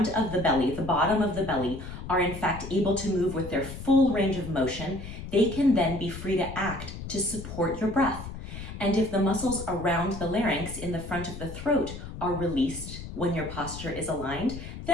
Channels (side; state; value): left; noise; rumble, 10 dB below the sound